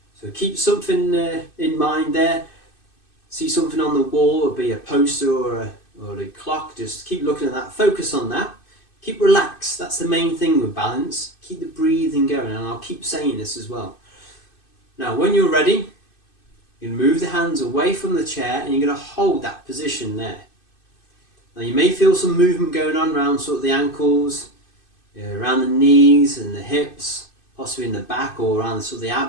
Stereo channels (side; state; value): right; late; 2.6 ms